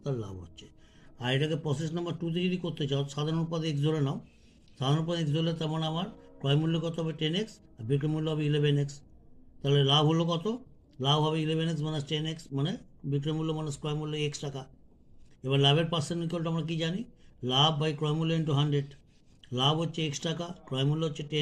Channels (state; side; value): identical; both; correlation 1.00